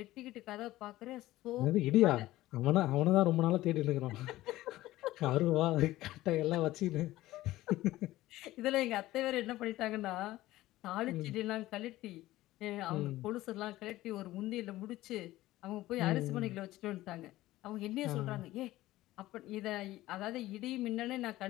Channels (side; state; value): right; quieter; 16.4 dB